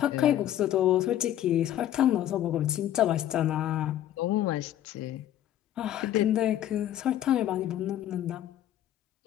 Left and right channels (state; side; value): quieter; right; 12.0 dB